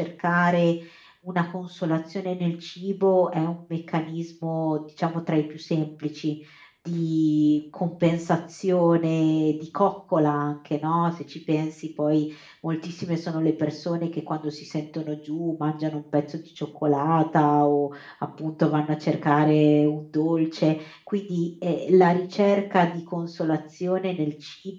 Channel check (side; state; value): both; identical; correlation 1.00